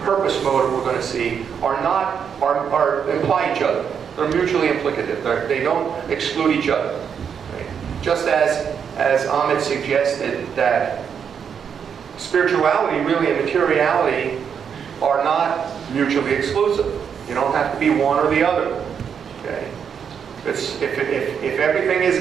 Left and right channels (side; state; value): left; quieter; 7.3 dB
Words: motive, we're going to see, are imply each other. They're mutually implicative. They don't exclude each other. Okay. Just as Amit suggested that spirituality really and materiality are not mutually exclusive. You don't have to be one or the other. Okay? If everything is